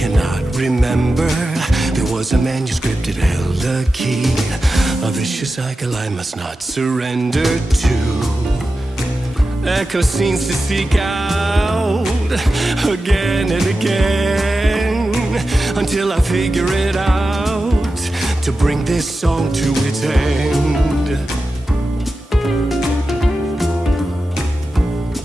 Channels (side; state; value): both; normal; correlation 0.92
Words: remember. There was a manuscript, it held a key. A vicious cycle I must not surrender to. Echo scenes to seek out again and again until I figure it out to bring this song to its end.